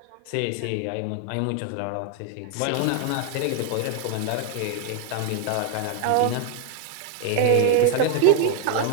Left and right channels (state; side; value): different; both; correlation 0.00